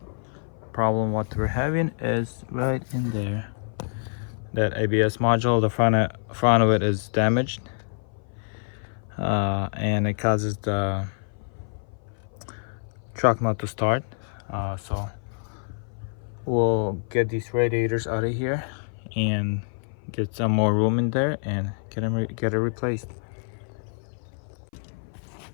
Problem what we're having is right in there. That ABS module, the front of it is damaged, and it causes the truck not to start. So we'll get these radiators out of here and get some more room in there and get it replaced.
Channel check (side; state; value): right; silent; 57 dB below the other